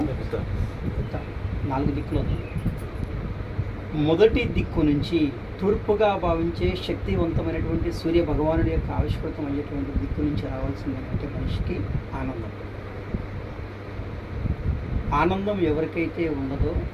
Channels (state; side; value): identical; both; correlation 1.00